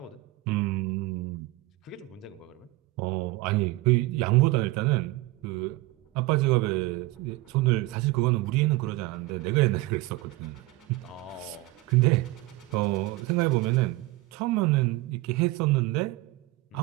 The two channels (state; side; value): quieter; left; 19.9 dB